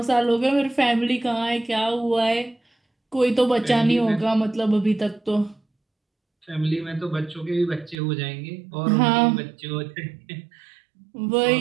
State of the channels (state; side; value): drops out; left; at 8.0 s